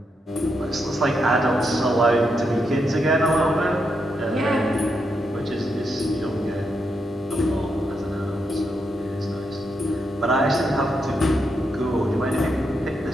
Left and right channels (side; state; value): both; normal; correlation 0.82